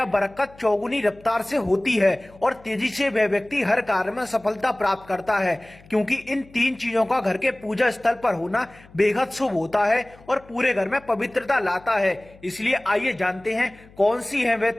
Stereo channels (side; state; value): left; noise; hum, 24 dB below the sound